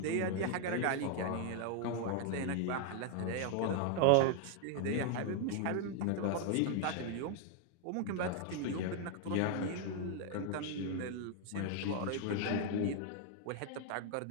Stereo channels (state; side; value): different; both; correlation 0.00